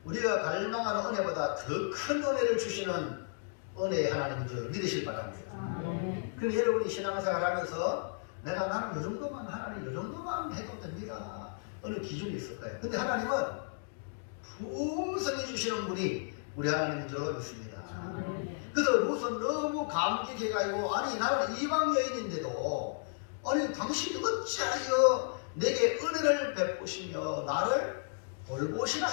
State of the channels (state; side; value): silent; right; digital silence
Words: 우리가 갈망하는 은혜보다 더 큰 은혜를 주시는 은혜의 하나님인 줄 믿으실 바랍니다. 그럼 여러분이 신앙생활 하면서 내가 나는 이 정도만 하나님 이 정도만 해도 됩니다. 어느 기준이 있을 거예요. 근데 하나님은 풍성히 주시는 분이 우리 하나님인 줄 믿습니다. 그래서 룻은 너무 감격해가지고 아니 나는 이방 여인인데도 아니 당신이 어찌하여 내게 은혜를 베푸시며 나를 돌보시나